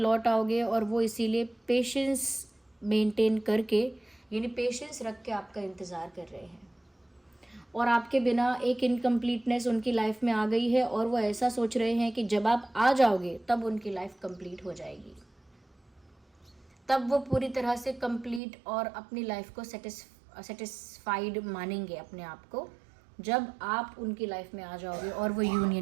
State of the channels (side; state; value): left; drops out; at 18.4 s